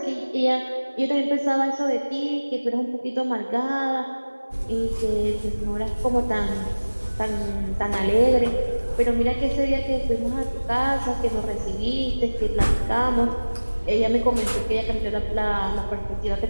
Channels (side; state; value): both; inverted; correlation -1.00